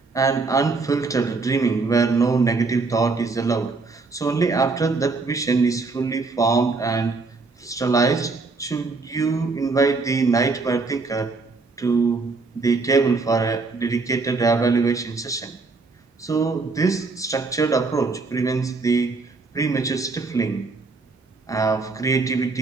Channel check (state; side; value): quieter; left; 4.0 dB